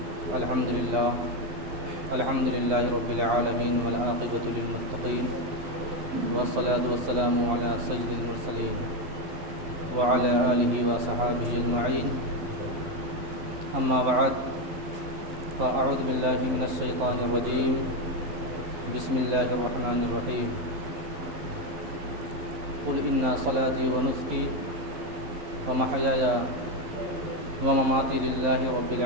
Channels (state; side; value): late; left; 11 ms